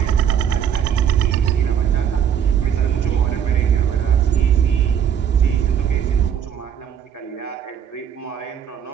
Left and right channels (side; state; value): left; quieter; 8.7 dB